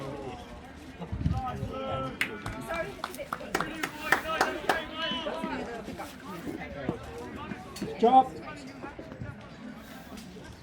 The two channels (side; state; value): both; identical; correlation 1.00